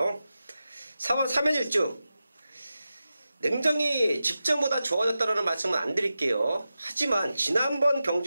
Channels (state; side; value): inverted; both; correlation -0.92